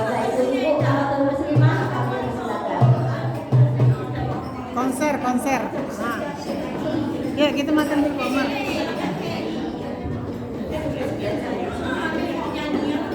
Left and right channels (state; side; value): identical; both; correlation 1.00